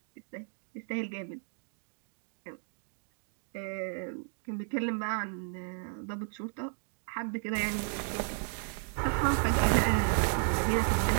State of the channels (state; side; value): silent; left; 55 dB below the other